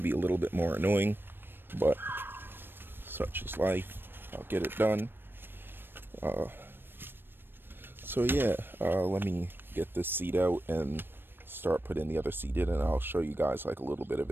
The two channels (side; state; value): left; late; 0.098 ms